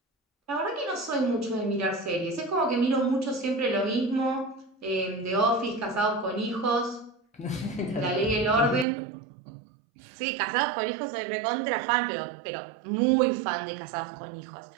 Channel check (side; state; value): left; drops out; at 8.8 s